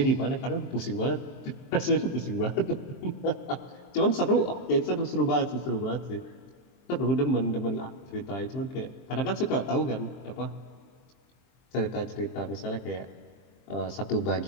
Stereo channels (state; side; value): late; right; 23 ms